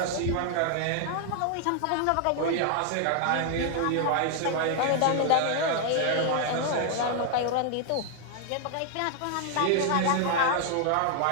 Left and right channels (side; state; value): both; different; correlation 0.00